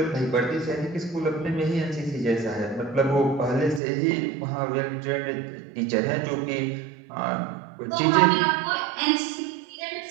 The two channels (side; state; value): left; drops out; at 3.8 s